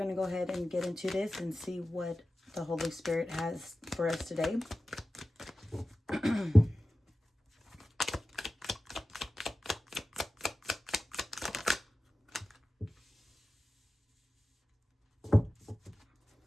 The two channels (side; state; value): both; normal; correlation 0.94